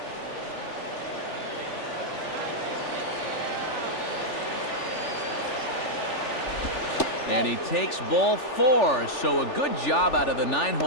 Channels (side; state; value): right; late; 3.4 ms